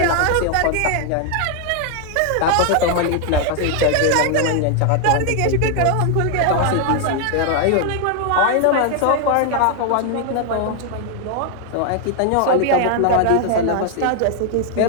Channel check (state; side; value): different; both; correlation 0.00